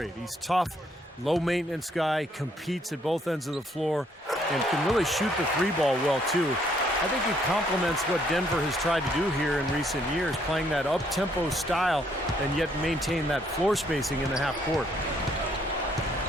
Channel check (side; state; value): both; normal; correlation 0.68